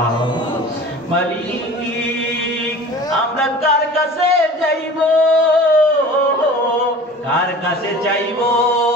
মালিক, আমরা কার কাছে যাইব, কার কাছে চাইব?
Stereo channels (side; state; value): both; normal; correlation 0.41